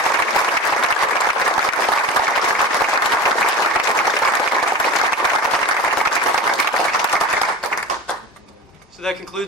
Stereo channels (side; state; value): both; normal; correlation 0.30